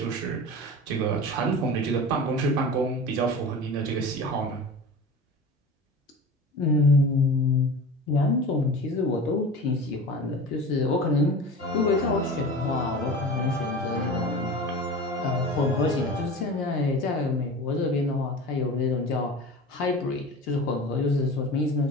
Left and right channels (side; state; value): both; normal; correlation 0.34